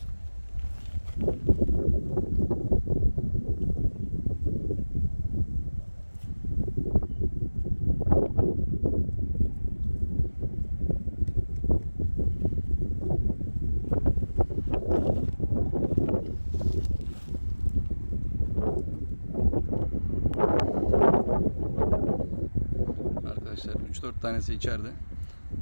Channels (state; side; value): inverted; both; correlation -1.00